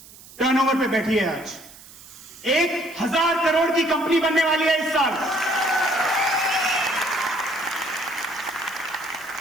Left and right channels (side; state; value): right; noise; hiss, 20 dB below the sound